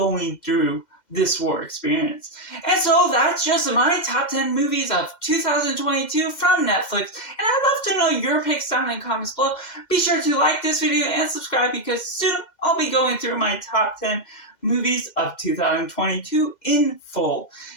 through this war experience. And so that's just my top 10 movies of 2022 from Netflix. And I'd love to know your picks down in the comments below. Be sure to like this video and subscribe because soon I'll be going through my top 10 movies of 2022 in full.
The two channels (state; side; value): late; right; 2.1 ms